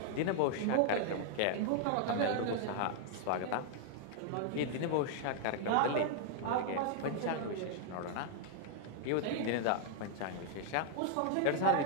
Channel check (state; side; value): different; both; correlation -0.01